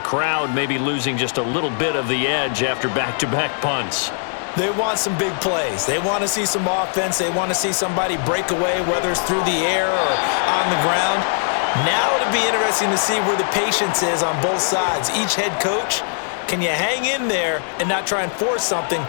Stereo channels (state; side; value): silent; right; digital silence